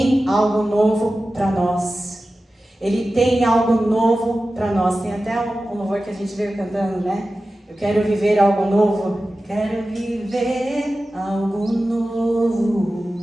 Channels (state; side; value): normal; both; correlation 0.94